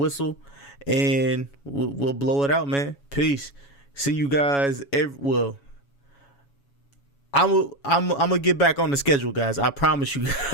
and we'll blow it out, man. Peace. See you guys. I'm gonna get back on the schedule, guys. I promise you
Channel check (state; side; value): late; right; 7.2 ms